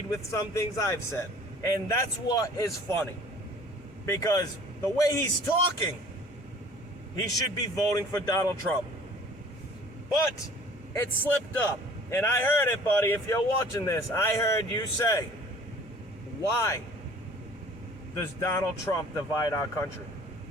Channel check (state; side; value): normal; both; correlation 0.50